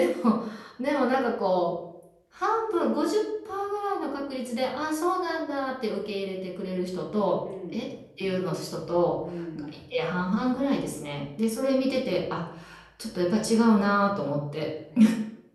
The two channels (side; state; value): both; identical; correlation 1.00